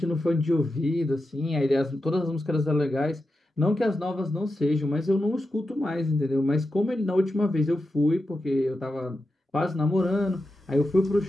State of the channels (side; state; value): both; normal; correlation 0.89